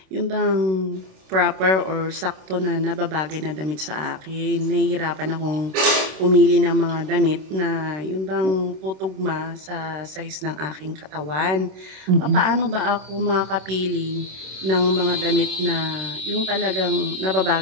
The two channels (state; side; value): late; left; 26 ms